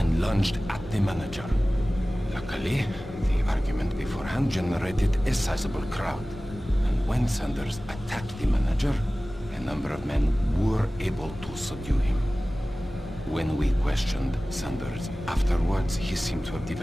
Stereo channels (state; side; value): normal; both; correlation 0.97